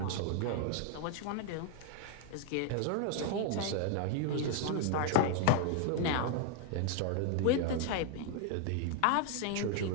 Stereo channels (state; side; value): different; both; correlation 0.01